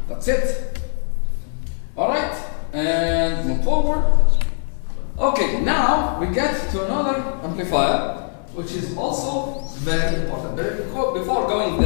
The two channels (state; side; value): silent; right; 62 dB below the other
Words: That's it. All right, and move forward. Okay, now we get to another amplifier, which is also very important. But before going